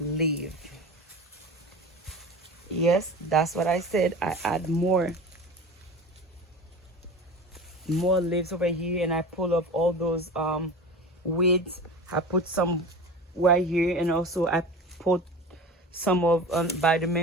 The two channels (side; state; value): both; normal; correlation 0.34